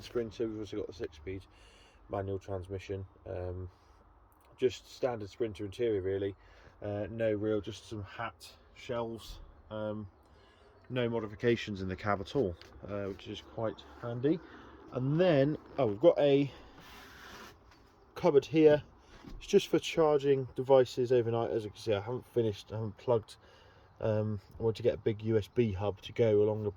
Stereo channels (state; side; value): identical; both; correlation 1.00